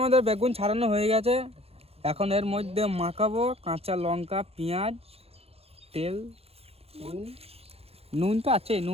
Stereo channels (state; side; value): late; left; 0.29 ms